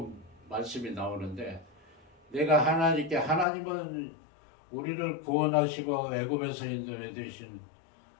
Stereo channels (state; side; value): drops out; right; at 3.5 s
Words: 말씀이 나오는데 내가 하나님은 우리를 구원하시고 애굽에서 인도해 주신